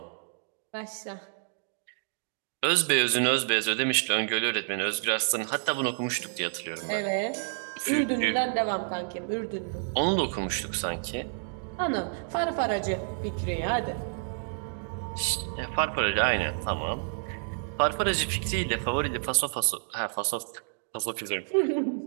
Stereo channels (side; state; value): left; silent; digital silence